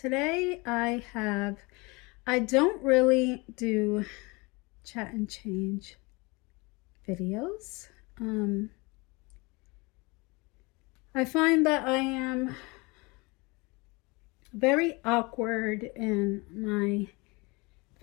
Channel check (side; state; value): right; quieter; 26.5 dB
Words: I don't really do chat and change videos. I find that I am very awkward in my